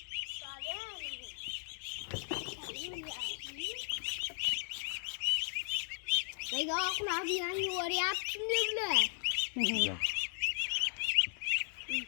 Nega oqlar bilan yuvaryapsizmi bular?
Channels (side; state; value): right; silent; 53 dB below the other